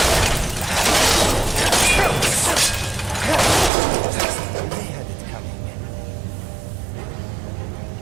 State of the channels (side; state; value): left; drops out; at 3.7 s